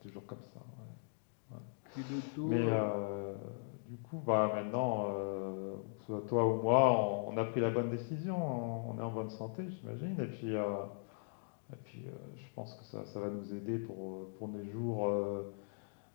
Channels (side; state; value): right; silent; digital silence